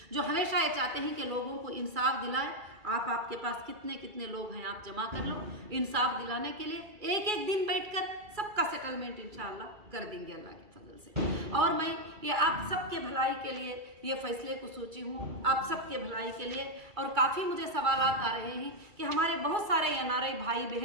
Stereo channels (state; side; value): late; left; 2.3 ms